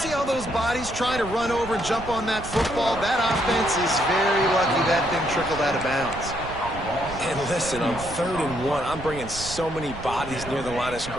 all those bodies trying to run over and jump on that football? That offense is very lucky that thing trickled out of bounds. And listen, on 3rd and 1, I'm bringing so many bodies near the line of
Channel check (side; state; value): right; noise; rumble, 12 dB below the sound